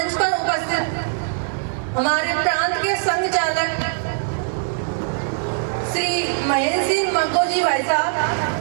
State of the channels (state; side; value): silent; left; digital silence